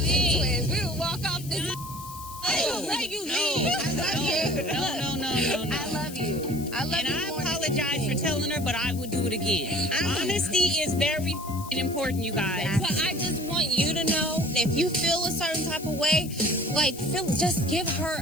twins. We will walk off this. Let you leave. I love you. No. I love you. I love And you. I more than apologize for anything. telling her, but I would do it again. Honesty is very important, you guys. But I just want you to know, if you feel a certain type of way, like, just give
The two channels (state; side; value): noise; left; hiss, 15 dB below the sound